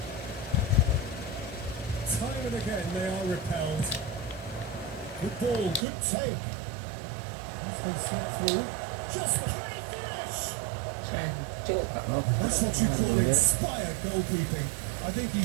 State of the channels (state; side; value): drops out; left; at 5.9 s